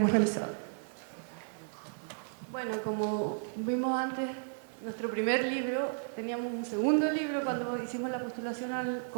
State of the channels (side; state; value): left; silent; 55 dB below the other